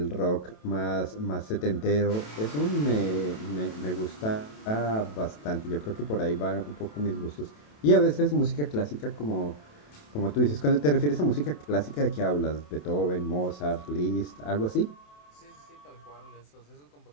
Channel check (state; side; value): late; right; 27 ms